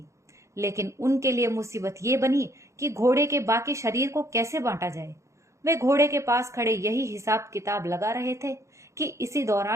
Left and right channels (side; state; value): left; late; 0.14 ms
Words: लेकिन उनके लिए मुसीबत ये बनी कि घोड़े के बाकी शरीर को कैसे बांटा जाए। वे घोड़े के पास खड़े यही हिसाब किताब लगा रहे थे कि इसी